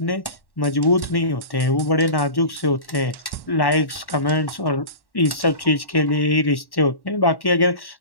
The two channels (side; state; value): right; late; 1.1 ms